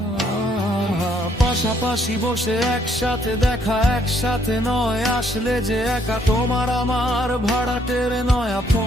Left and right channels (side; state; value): both; normal; correlation 0.68